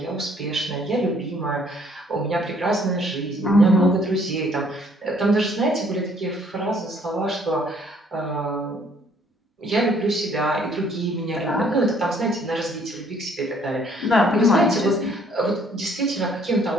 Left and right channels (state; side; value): normal; both; correlation 0.62